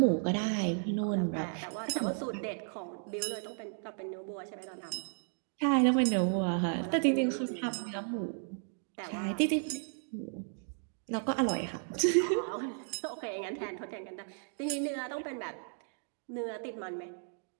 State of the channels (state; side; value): silent; left; 55 dB below the other